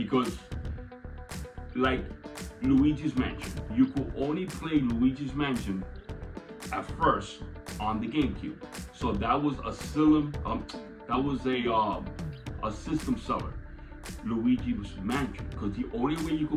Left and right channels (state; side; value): identical; both; correlation 1.00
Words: like Luigi's Mansion, you could only play Luigi's Mansion at first on the GameCube. So that was a system seller, Luigi's Mansion, because the only way you